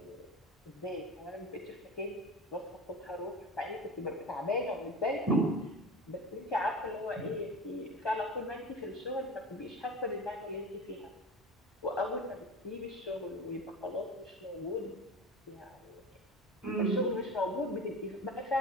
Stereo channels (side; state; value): both; normal; correlation 0.31